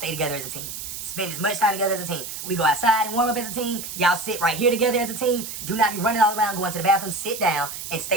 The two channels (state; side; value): noise; right; hiss, 8 dB below the sound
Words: together as a team. Spend as much time together as a team. We go outside and warm up as a team. Y'all sit right here together as a team. Do not be running all around, going to the bathroom. Sit down and